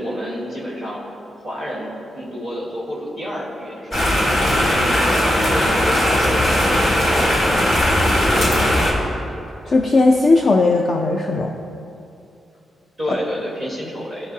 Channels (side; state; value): both; normal; correlation 0.87